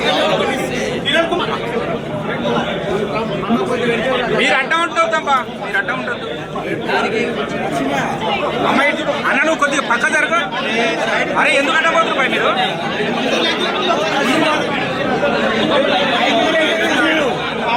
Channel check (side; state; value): both; identical; correlation 1.00